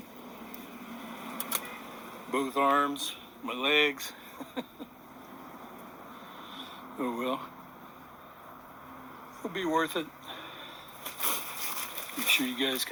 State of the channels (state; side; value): identical; both; correlation 1.00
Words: Both arms, my legs. Oh well. It'll be worth it. Make sure you guys